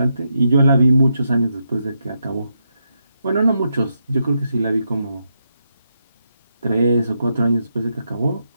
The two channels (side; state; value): both; inverted; correlation -0.82